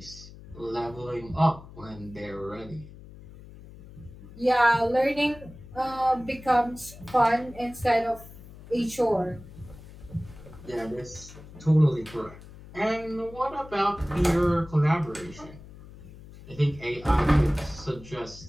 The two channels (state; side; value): noise; left; hum, 18 dB below the sound